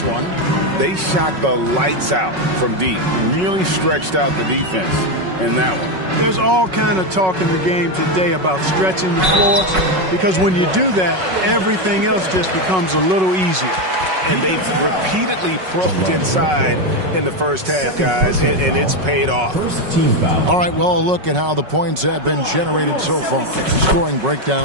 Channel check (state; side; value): late; left; 5.4 ms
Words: one. They shot the lights out from deep. Really stretched out the defense in that one. There's all kind of talk in the game today about stretching the floor, because when you do that, everything else just becomes a little easier. And they've repeatedly probed inside in the first half, guys, and it's paid off. All right, well, a look at how the points have been generated so far. Scoring